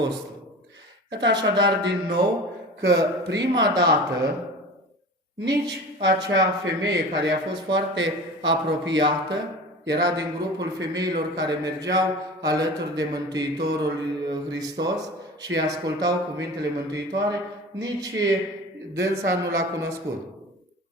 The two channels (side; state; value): both; normal; correlation 0.36